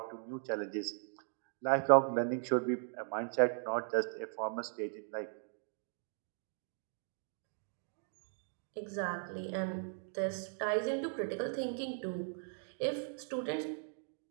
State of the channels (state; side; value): silent; left; 52 dB below the other